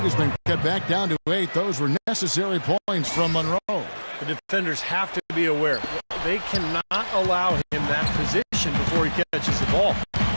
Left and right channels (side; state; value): both; inverted; correlation -1.00